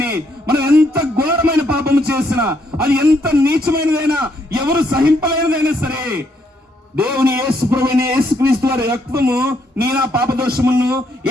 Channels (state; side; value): normal; both; correlation 0.73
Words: మనం ఎంత ఘోరమైన పాపము చేసినా, అది ఎంత నీచమైనదైనా, ఎవరు సహింపలేనిదైనా సరే, దేవుని యేసు ప్రభువైన యేసుక్రీస్తు వారి రక్తము నీ నా పాప దోషములను